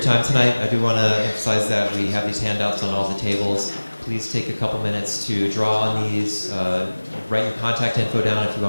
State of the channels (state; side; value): inverted; both; correlation -1.00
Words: time tonight. I do want to emphasize that we have these handouts on all the tables. Please take a couple minutes to draw on these, write your contact info down if you